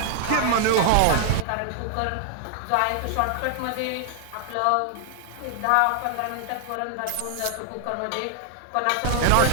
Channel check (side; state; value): both; different; correlation 0.00